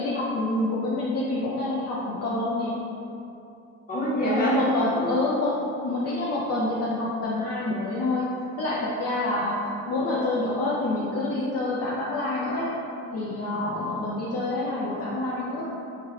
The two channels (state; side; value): normal; both; correlation 0.28